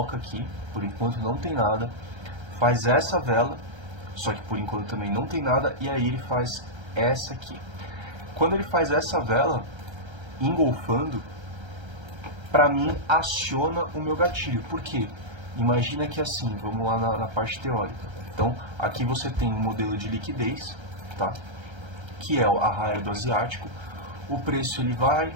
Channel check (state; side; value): late; left; 1.3 ms